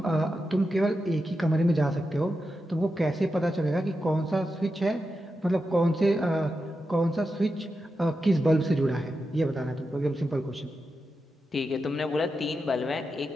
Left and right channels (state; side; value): normal; both; correlation 0.89